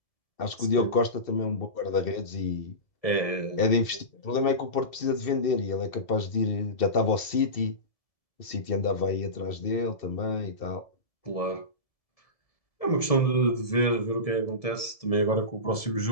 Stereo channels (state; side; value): late; right; 1.7 ms